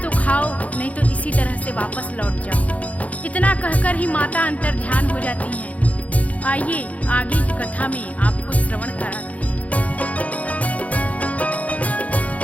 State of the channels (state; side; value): late; right; 0.067 ms